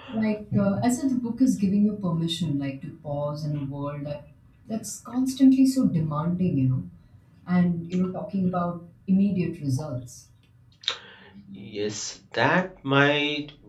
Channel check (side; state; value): both; identical; correlation 1.00